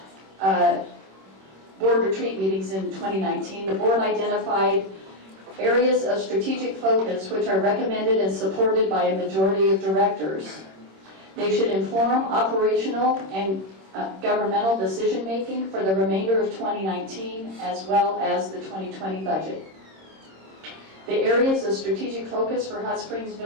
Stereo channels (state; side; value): late; left; 26 ms